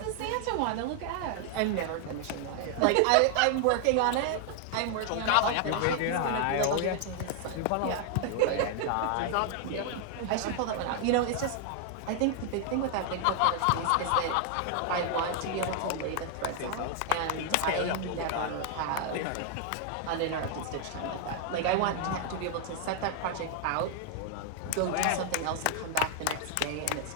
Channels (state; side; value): different; both; correlation 0.00